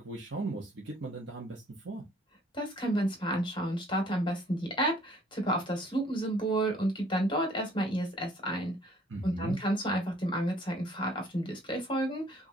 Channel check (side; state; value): both; normal; correlation 0.59